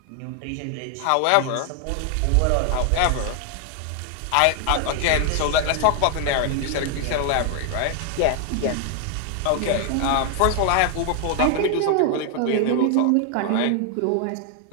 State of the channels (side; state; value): both; different; correlation 0.00